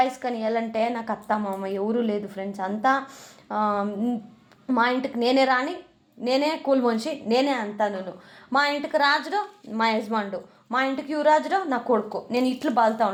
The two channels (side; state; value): both; identical; correlation 1.00